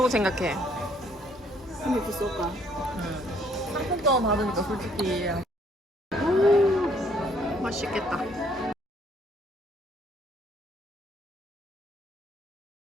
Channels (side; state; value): both; normal; correlation 0.65